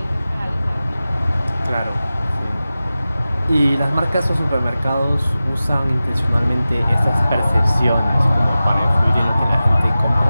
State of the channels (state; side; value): inverted; both; correlation -0.95